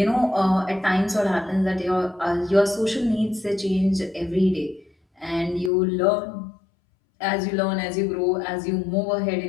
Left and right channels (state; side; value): drops out; right; at 5.7 s